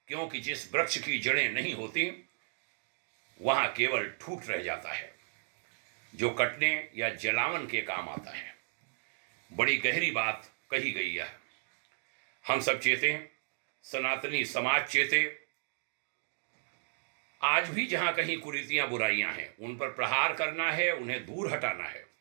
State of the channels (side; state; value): left; silent; digital silence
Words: क्योंकि जिस वृक्ष की जड़ें नहीं होती वहां केवल ठूठ रह जाता है जो कटने या जलावन के काम आता है। बड़ी गहरी बात कही गई है। हम सब चेते, सनातनी समाज चेते। आज भी जहां कहीं कुरीतियां बुराइयां हैं उन पर प्रहार करना है, उन्हें दूर हटाना है